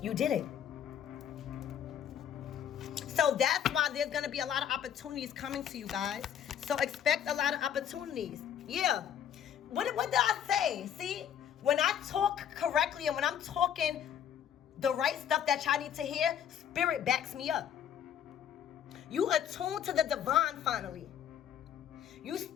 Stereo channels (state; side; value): quieter; right; 9.3 dB